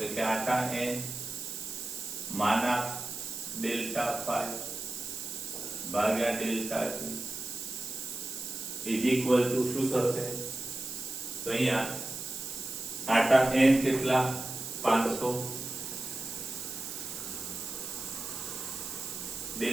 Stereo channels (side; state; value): right; noise; hiss, 7 dB below the sound